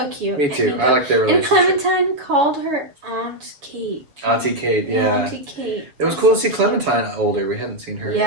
cute. Me too. And I like their And relationship. Clementine called her Aunt Kate. Auntie Kate, yeah. Auntie Kate. It was cool to see Clementine older. We hadn't seen her.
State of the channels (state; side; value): late; left; 7.0 ms